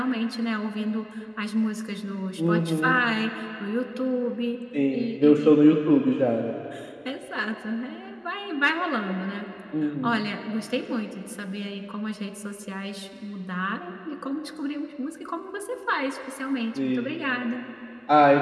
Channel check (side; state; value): both; identical; correlation 1.00